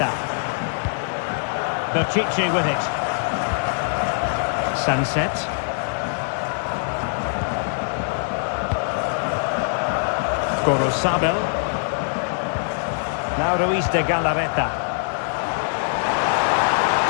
Berchiche with it. Sunset. Gorosabel. Now Ruiz de Galarreta.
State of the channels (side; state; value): right; silent; digital silence